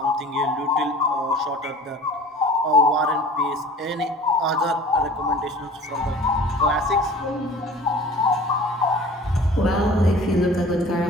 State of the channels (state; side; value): normal; both; correlation 0.44